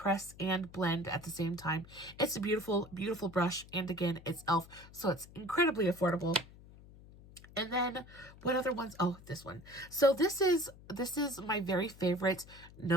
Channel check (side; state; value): left; noise; hum, 20 dB below the sound